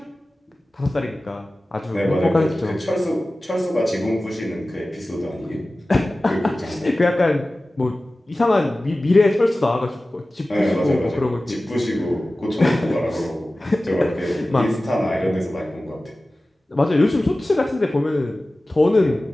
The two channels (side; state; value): both; normal; correlation 0.96